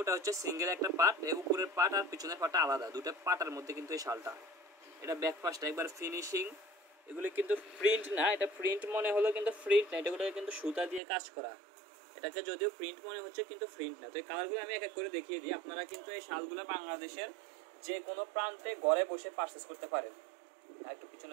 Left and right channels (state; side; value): drops out; left; at 11.0 s